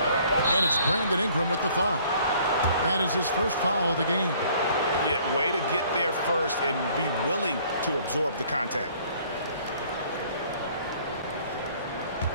it's Brandon Ingram with the foul. That is his first foul of the game. Yeah, way to get there first and be willing to absorb the contact.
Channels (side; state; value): both; inverted; correlation -0.58